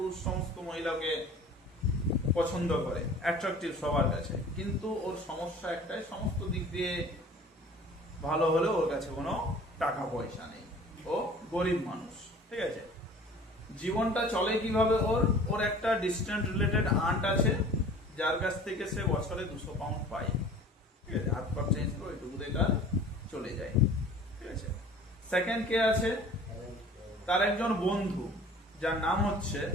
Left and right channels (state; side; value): normal; both; correlation 0.46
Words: সমস্ত মহিলাকে পছন্দ করে, অ্যাট্রাকটিভ সবার কাছে। কিন্তু ওর সমস্যা একটাই, সমস্ত দিক দিয়ে ভালো হলেও ওর কাছে কোনো টাকা পয়সা নেই, ও গরিব মানুষ, ঠিক আছে। জীবনটা চলে কিভাবে? ওর একটা ডিস্টেন্ট রিলেটেড আন্ট আছে, যার কাছ থেকে সে বছরে 200 পাউন্ড পায়, ঠিক আছে, হাত পা চেঞ্জ করে ওইটুকুতে তার চলে যায়, ঠিক আছে। সেকেন্ড কে আছে? তার একজন বন্ধু, যার নাম হচ্ছে